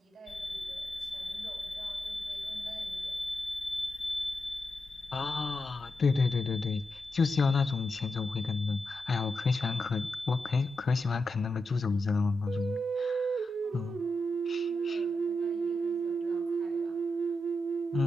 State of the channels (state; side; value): normal; both; correlation 0.88